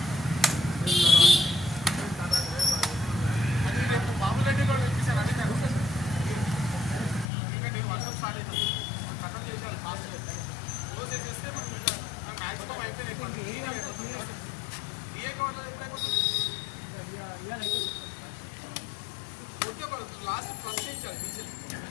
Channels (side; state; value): right; drops out; at 7.3 s